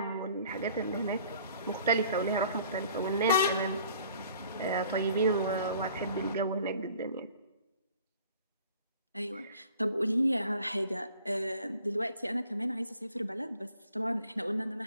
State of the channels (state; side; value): inverted; both; correlation -0.52